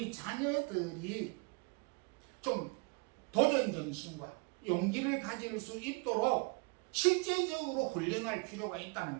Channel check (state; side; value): quieter; left; 31.7 dB